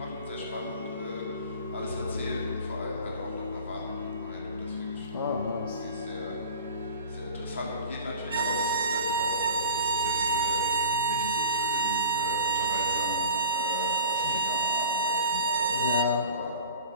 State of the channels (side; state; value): both; inverted; correlation -0.39